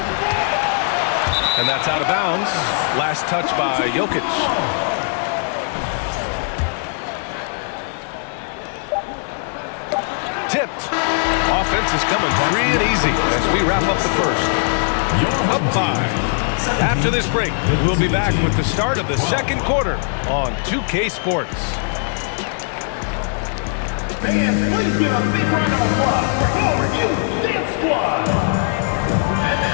And that's out of bounds. Last touch by Jokic. Tipped. Offense is coming free and easy as we wrap up the first. Up 5. After this break, we'll be back with the start of the second quarter on 2K Sports. Fans, please give a big round of applause for your Dance Squad.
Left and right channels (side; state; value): right; silent; digital silence